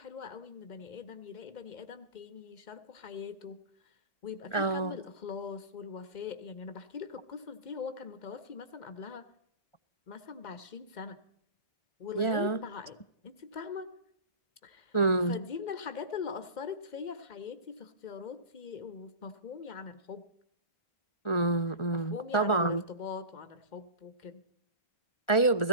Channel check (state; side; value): late; right; 1.4 ms